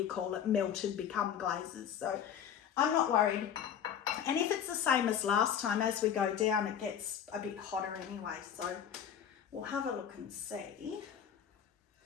call it, melted, become glazes. So I'm not worried. And if it's the same as last time, as we go down, it gets a bit hotter anyway. So we'll have a look and see.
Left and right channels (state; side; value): quieter; right; 8.8 dB